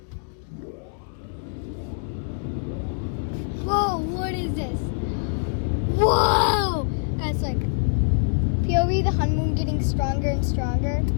Whoa, what is this? Whoa! Guys, like, POV, the honeymoon getting stronger and stronger.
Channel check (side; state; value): right; silent; digital silence